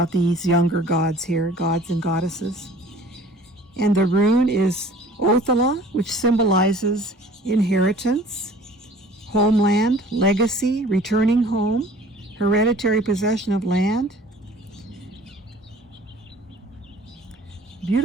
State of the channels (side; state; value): both; normal; correlation 0.49